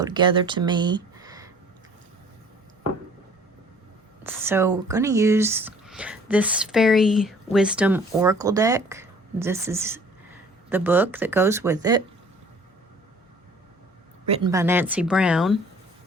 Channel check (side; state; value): both; normal; correlation 0.52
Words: together to me. So we're going to use this Fairy Wisdom Oracle deck. This is the book that goes with it, written by Nancy Brown